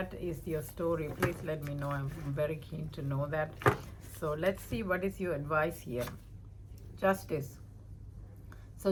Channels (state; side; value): identical; both; correlation 1.00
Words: is your story, please let me know. I'm very keen to know that. So let's see what is your advice here. Justice. So